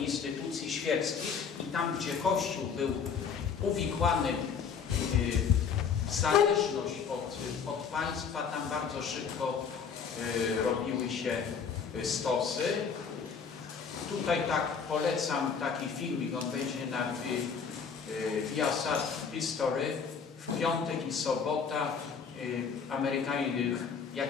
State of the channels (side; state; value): right; quieter; 6.3 dB